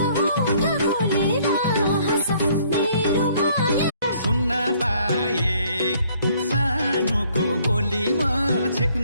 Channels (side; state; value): both; inverted; correlation -0.62